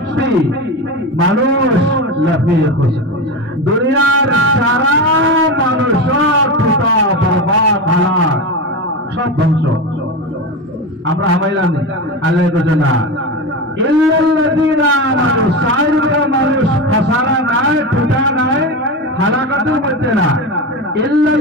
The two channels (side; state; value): both; normal; correlation 0.20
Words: মানুষ লাফিয়ে খুশি দুনিয়ার সারা মানুষ টুটা বরবাদ হালাক সব ধ্বংস আমরা হামাইলাম নেই আল্লাহ বলেন না ইল্লাল্লাযীনা আমানু সাইরকা মানুষ খাসারা নাই টুটা নাই হালাকাতের মধ্যে না